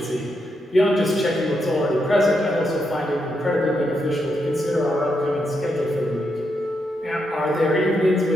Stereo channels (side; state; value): both; normal; correlation 0.82